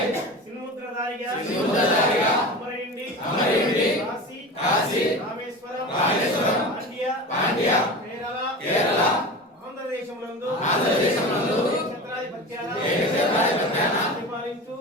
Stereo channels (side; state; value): both; normal; correlation 0.30